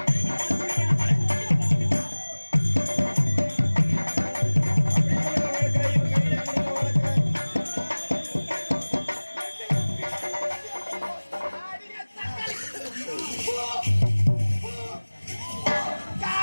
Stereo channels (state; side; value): inverted; both; correlation -1.00